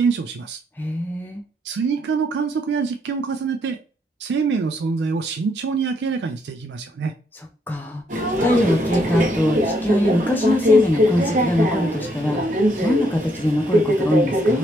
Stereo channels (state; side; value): normal; both; correlation 0.73